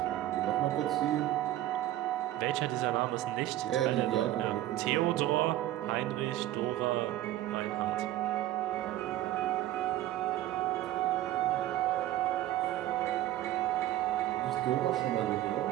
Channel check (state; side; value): quieter; left; 14.3 dB